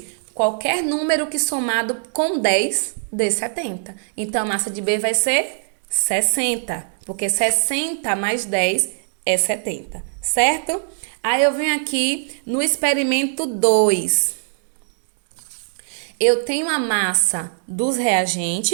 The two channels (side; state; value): left; silent; digital silence